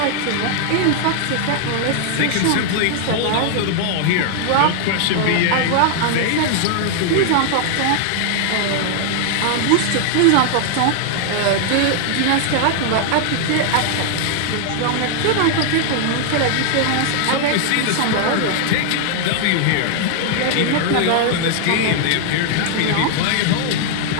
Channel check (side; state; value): both; different; correlation 0.00